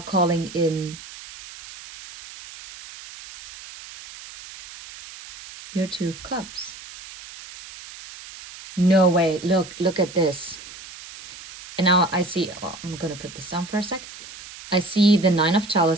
calling in your Two of Cups. No way, look at this. And now I see, well, I'm gonna put this down for a sec. I see the Nine of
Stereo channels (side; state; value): right; noise; hiss, 16 dB below the sound